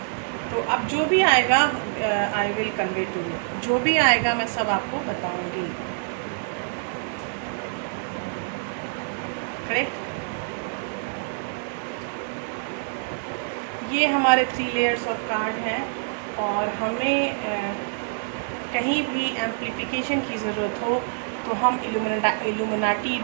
तो अब जो भी आएगा I will convey to you, जो भी आएगा मैं सब आपको बताऊंगी। करेक्ट? ये हमारे 3 लेयर्स ऑफ कार्ड हैं और हमें कहीं भी एम्प्लीफिकेशन की ज़रूरत हो तो हम इल्यूमिनाटी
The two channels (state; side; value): silent; left; 61 dB below the other